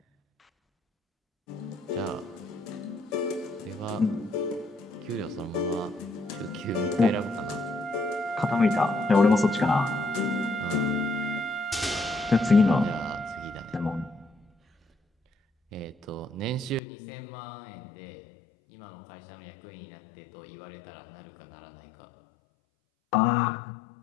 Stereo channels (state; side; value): drops out; right; at 16.8 s